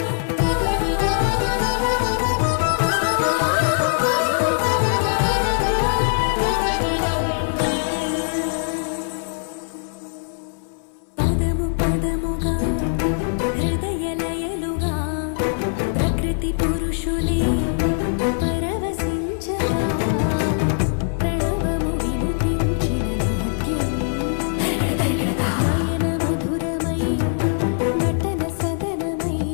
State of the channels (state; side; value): silent; right; 61 dB below the other